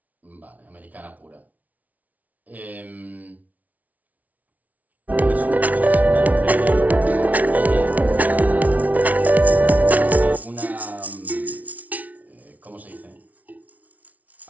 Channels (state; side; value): late; left; 0.072 ms